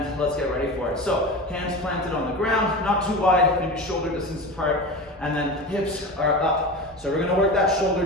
let's get ready for it. So hands planted on the ground, not too wide, maybe shoulder distance apart. And then hips are up. So we're going to work that shoulder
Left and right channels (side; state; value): both; normal; correlation 0.28